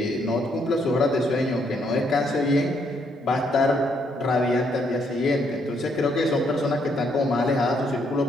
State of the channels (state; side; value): normal; both; correlation 0.72